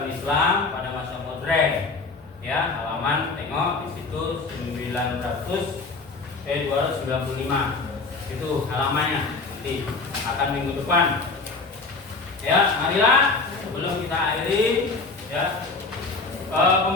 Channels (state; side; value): quieter; right; 3.9 dB